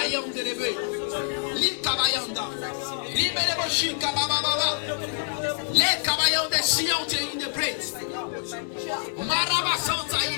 Yanda Lebe. Li Kabayanda. Libelebo Shika Baba. Le Kabayanda Siante in the praise. Maraba Santa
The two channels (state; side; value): silent; right; 61 dB below the other